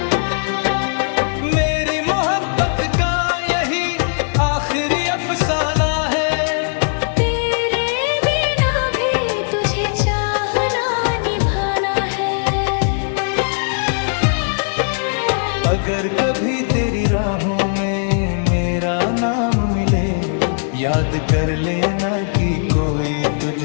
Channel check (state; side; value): silent; right; digital silence